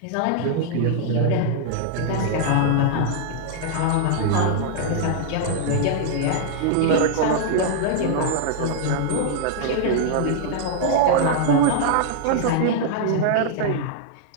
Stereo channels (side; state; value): both; different; correlation -0.01